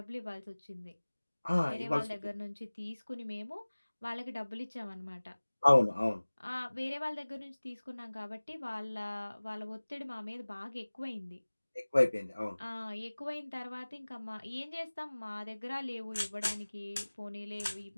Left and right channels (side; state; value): both; inverted; correlation -1.00